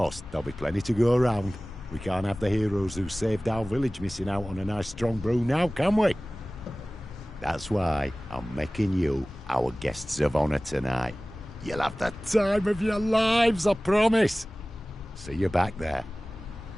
there'll be plenty to go around. We can't have the heroes who saved our village missing out on a nice strong brew now, can we? That's why I'm making you our guests of honour tonight. You'll have the time of your lives, I promise. See you back there.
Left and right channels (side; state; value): both; normal; correlation 0.98